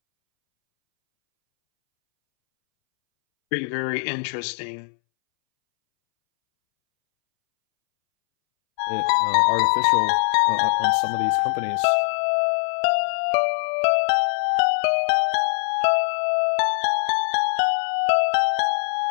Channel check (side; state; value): right; silent; 64 dB below the other